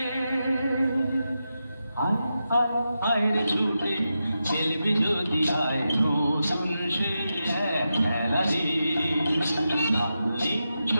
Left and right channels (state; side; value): inverted; both; correlation -0.89